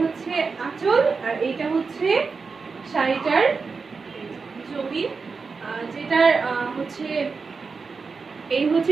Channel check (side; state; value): left; quieter; 4.8 dB